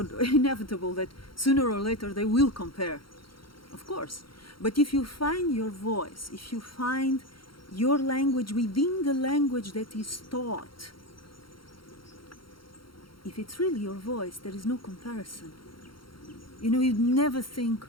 that sooner or later they will compare, of course. But if you find your voice, if you find your language within the language that is taught, if it's really your voice, there is no comparison. You'd never think,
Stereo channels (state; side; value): late; right; 0.73 ms